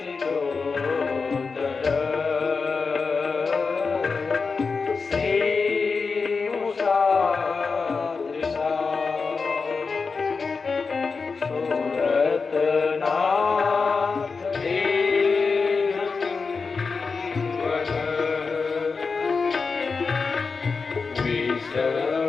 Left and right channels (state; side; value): quieter; right; 4.7 dB